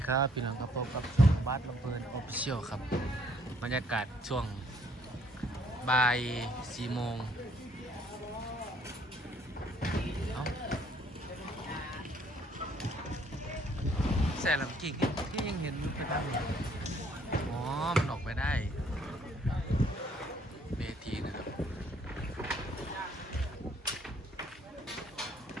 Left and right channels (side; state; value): both; normal; correlation 0.64